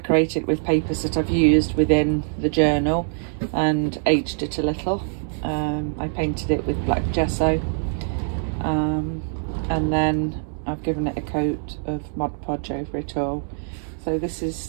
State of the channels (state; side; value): silent; left; 63 dB below the other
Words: with papers that I've used within the journal and aged it a little. I painted it with black gesso, and then I've given it a coat of Mod Podge over it all. So this